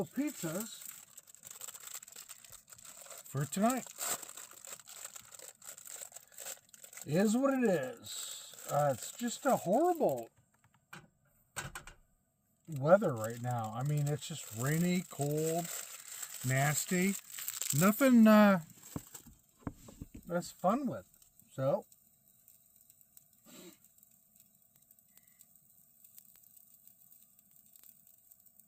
pizzas for tonight. It is what it is. It's just a horrible weather right now. I mean, it's just rainy, cold, nasty. Nothing that's fun with. So,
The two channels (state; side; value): identical; both; correlation 1.00